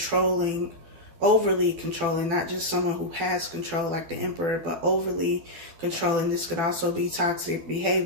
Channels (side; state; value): left; late; 12 ms